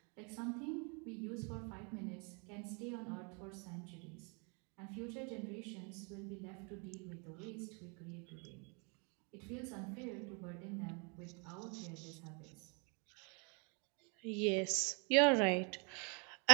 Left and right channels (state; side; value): quieter; left; 34.1 dB